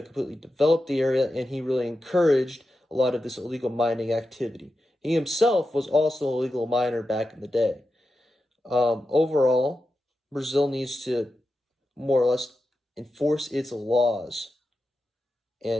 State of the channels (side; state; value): both; normal; correlation 0.90